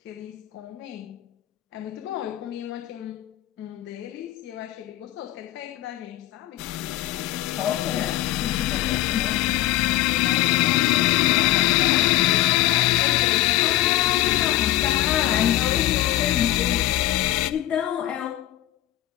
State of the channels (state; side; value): quieter; right; 14.8 dB